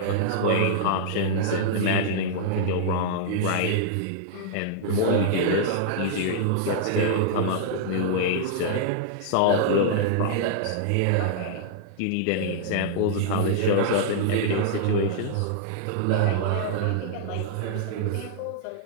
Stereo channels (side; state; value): both; different; correlation -0.01